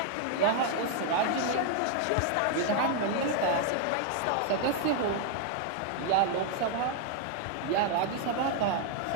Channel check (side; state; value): both; different; correlation 0.00